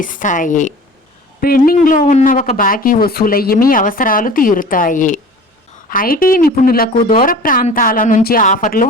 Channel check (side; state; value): both; normal; correlation 0.41